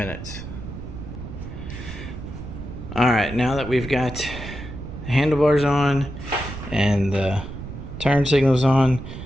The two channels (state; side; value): noise; right; rumble, 10 dB below the sound